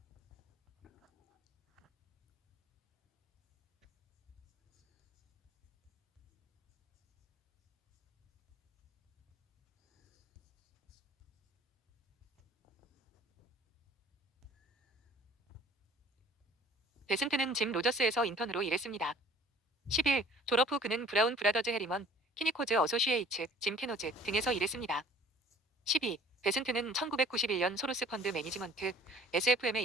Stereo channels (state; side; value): normal; both; correlation 0.51